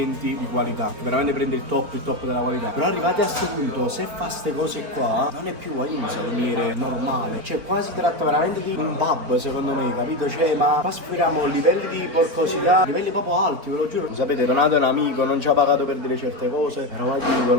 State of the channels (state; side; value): late; left; 4.4 ms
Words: di qualità, che veramente prende il top della qualità. Però arrivati a questo punto, se fa ste cose qua, non è più un salumiere normale, cioè quasi tratta veramente di un pub, secondo me, capito? Cioè, ma qua sforiamo livelli di porcosità, livelli proprio alti, ve lo giuro. Sapete, Donato è un amico, non ci ha pagato per dire certe cose, però ve